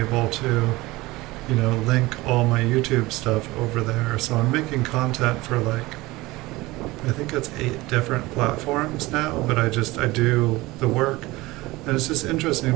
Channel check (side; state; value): left; quieter; 20.4 dB